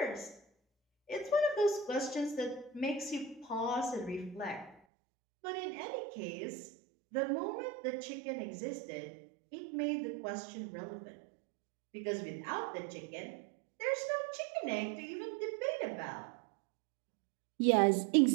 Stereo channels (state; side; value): drops out; left; at 4.8 s